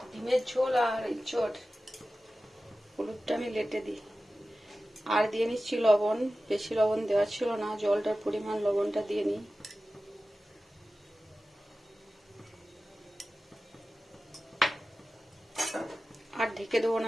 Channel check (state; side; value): normal; both; correlation 0.95